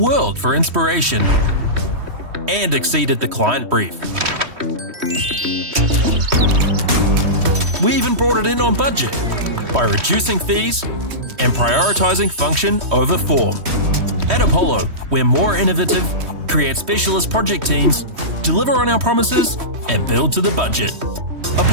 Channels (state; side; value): late; left; 3.1 ms